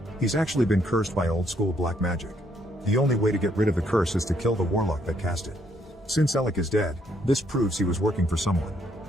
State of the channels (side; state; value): both; normal; correlation 0.71